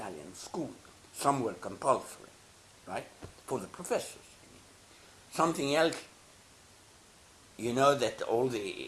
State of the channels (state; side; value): identical; both; correlation 1.00